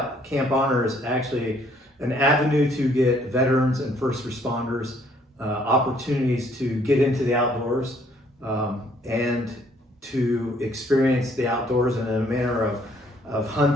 Camp Honor is actually an avenue to get veterans and first responders opportunities to get into the outdoors and to experience the outdoors in a manner of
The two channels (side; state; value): both; normal; correlation 0.64